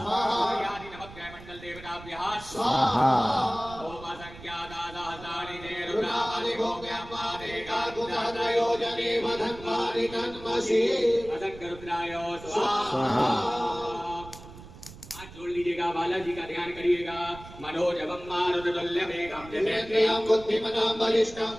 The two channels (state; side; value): noise; right; rumble, 17 dB below the sound